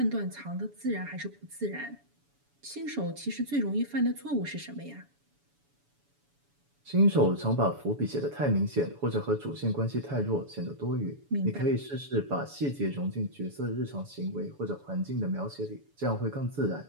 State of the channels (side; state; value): left; late; 7.0 ms